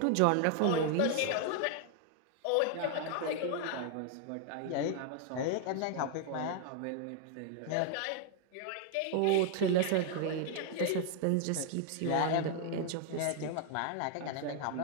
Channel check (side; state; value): both; different; correlation 0.00